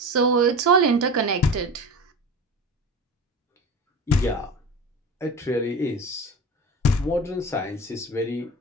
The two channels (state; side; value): normal; both; correlation 0.31